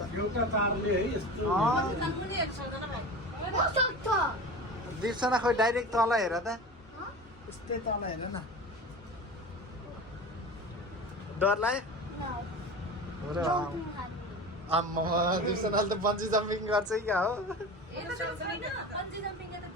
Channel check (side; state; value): both; normal; correlation 0.32